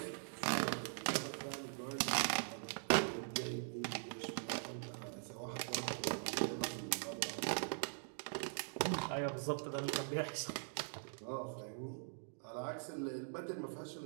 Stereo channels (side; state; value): left; silent; digital silence